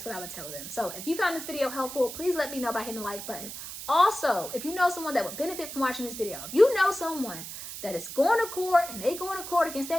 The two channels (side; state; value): right; noise; hiss, 9 dB below the sound